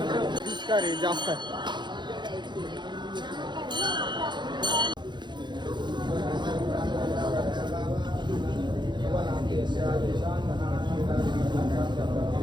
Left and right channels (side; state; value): left; late; 0.22 ms